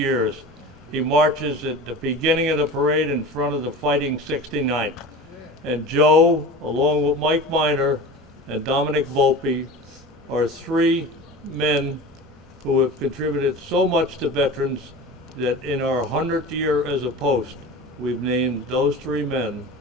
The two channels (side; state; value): both; normal; correlation 0.34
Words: He marches at the beginning of the parade in front of the Fighting 69th. And Joe, along with Mike Miner and Dominic Volpe, are three men who have contributed so much to veterans that in our 100th year as a post, we've named those three men